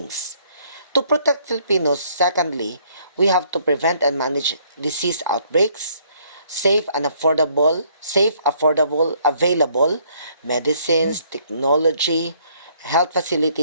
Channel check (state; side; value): inverted; both; correlation -0.65